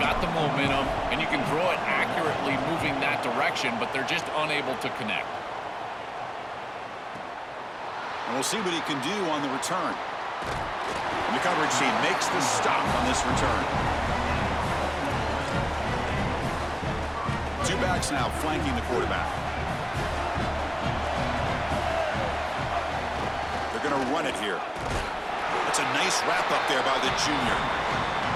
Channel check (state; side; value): identical; both; correlation 1.00